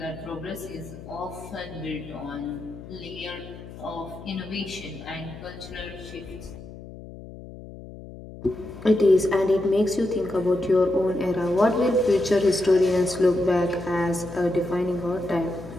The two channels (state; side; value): noise; left; hum, 15 dB below the sound